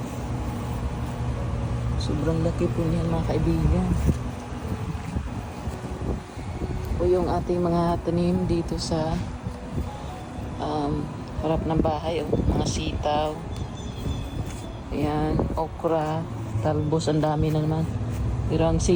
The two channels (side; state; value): both; identical; correlation 1.00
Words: Sobrang laki po niyan mga kaibigan. O yung ating mga tanim dito sa harap ng bahay. Mga sitaw. Ayan. Okra. Talbos. Ang dami na naman. Pero ang